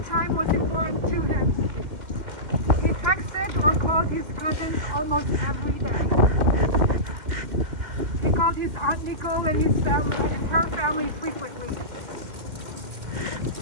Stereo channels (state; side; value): late; left; 2.1 ms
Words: time was important to him. He texted or called his cousins almost every day. He called his Aunt Nicole and his family and her family frequently.